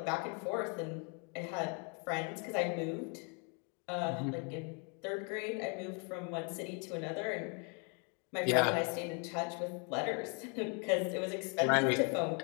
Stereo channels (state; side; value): quieter; right; 37.4 dB